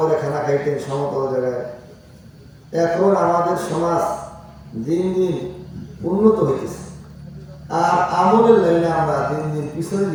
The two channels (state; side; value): identical; both; correlation 1.00